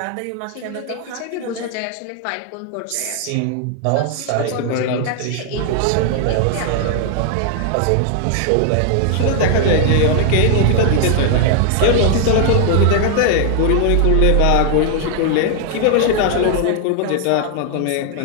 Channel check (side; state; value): both; different; correlation 0.00